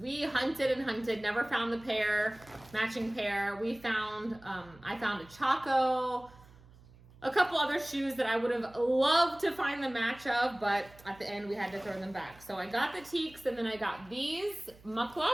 hunted and hunted, never found the matching pair. We found, I found a Chaco, a couple other shoes that I would have loved to find the match of, but at the end we had to throw them back. So I got the teaks, and then I got these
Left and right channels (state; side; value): noise; right; hum, 24 dB below the sound